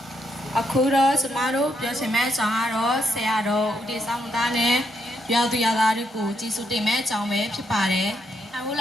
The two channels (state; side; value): normal; both; correlation 0.78